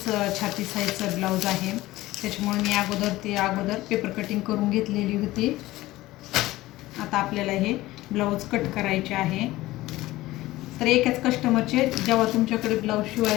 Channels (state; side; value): quieter; right; 17.6 dB